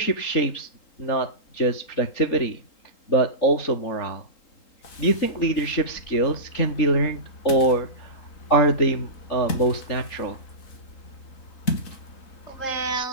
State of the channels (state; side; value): late; right; 3.8 ms